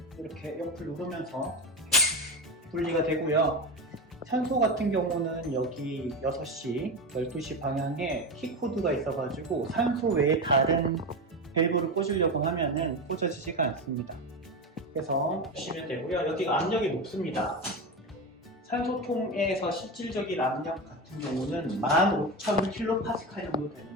이렇게 옆을 누르면서 분리가 되고요. 산소 같은 경우는 여기 6시, 12시 방향에 키코드가 있어가지고 산소 외에 다른 밸브를 꽂으려고 하면은 꽂아지지가 않습니다. 그래서 보시면 되고요. 여기가 압력이 높습니다. 산소통에서 실질적인 압력 같은 경우는 15,000kPa 정도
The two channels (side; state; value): both; normal; correlation 0.19